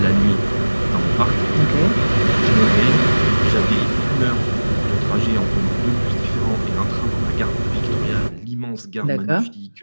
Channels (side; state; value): both; inverted; correlation -1.00